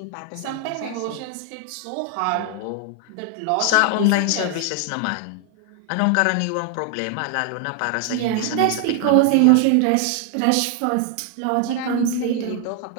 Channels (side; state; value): both; different; correlation 0.00